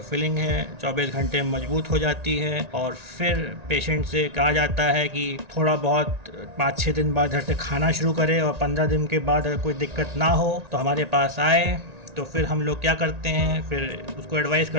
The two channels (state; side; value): late; left; 1.9 ms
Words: फिलिंग है 24 घंटे में मजबूत हो जाती है। और फिर पेशेंट से कहा जाता है कि थोड़ा बहुत 5-6 दिन बाद घर से खाना शुरू करे और 15 दिन के बाद अगर कोई दिक्कत ना हो तो हमारे पास आए। तो फिर हम लोग क्या करते हैं, फिर उसको एडवाइस